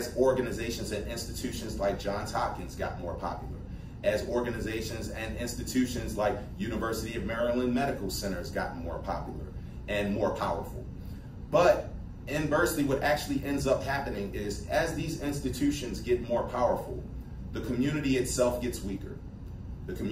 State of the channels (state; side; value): identical; both; correlation 1.00